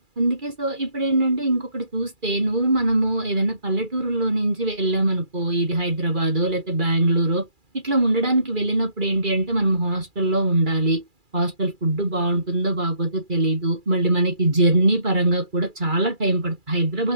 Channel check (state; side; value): late; left; 2.4 ms